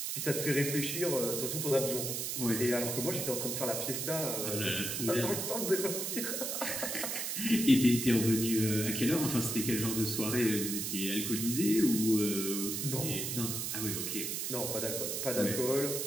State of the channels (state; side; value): noise; right; hiss, 2 dB below the sound